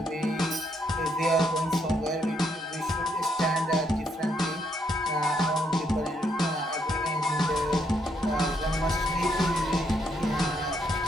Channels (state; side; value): normal; both; correlation 0.74